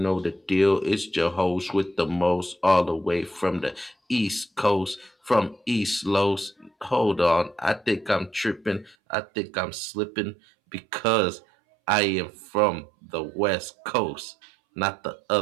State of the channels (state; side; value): drops out; left; at 9.0 s